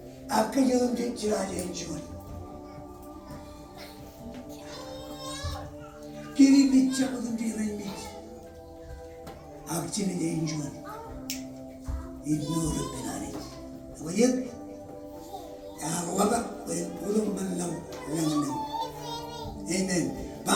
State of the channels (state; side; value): identical; both; correlation 1.00